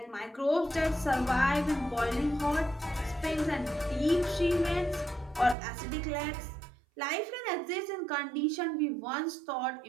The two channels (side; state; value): left; drops out; at 5.6 s